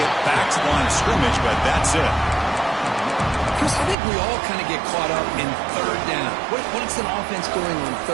back to the line of scrimmage, but that's it. Chris, I think we all kind of get caught up in 3rd down. What's an offense doing on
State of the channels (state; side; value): drops out; left; at 4.0 s